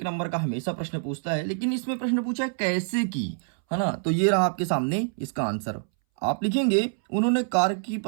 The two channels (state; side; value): silent; left; 61 dB below the other